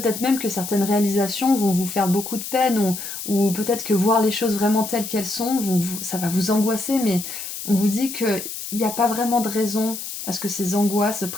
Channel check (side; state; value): left; noise; hiss, 8 dB below the sound